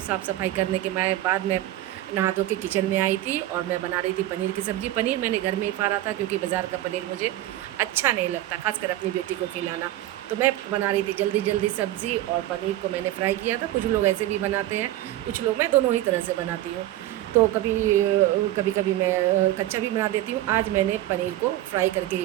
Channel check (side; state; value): left; quieter; 14.8 dB